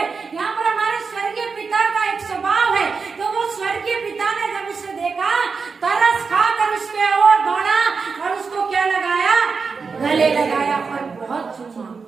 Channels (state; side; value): quieter; left; 5.0 dB